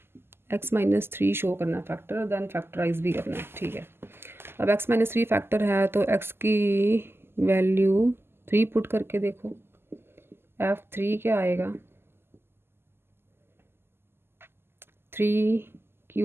x -3 show करना है फैक्टर, देन फैक्टराइज भी करना है। ठीक है, अब x -3 फैक्टर है तो x की वैल्यू 3 पुट करके देखो, f3 क्या आएगा,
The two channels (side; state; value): left; late; 0.12 ms